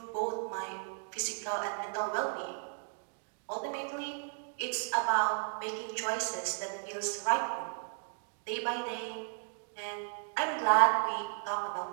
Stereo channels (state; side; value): silent; left; digital silence